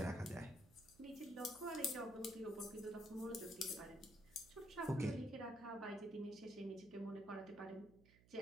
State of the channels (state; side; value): noise; right; hum, 24 dB below the sound